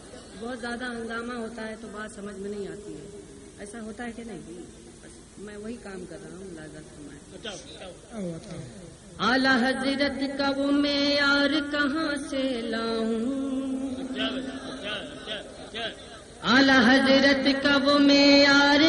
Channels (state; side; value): identical; both; correlation 1.00